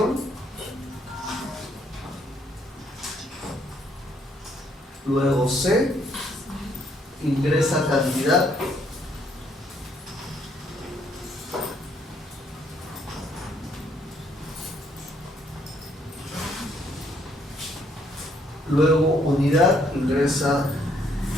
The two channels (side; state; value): both; normal; correlation 0.69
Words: Luego C ingresa cantidad. Luego unidad ingresa